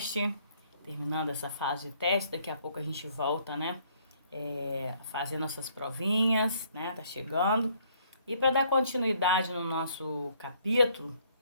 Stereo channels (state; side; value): inverted; both; correlation -0.65